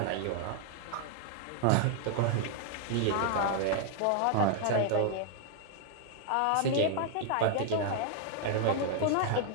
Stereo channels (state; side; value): different; both; correlation 0.00